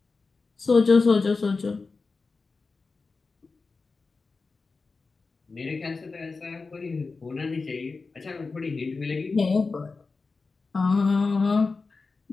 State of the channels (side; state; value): right; quieter; 4.1 dB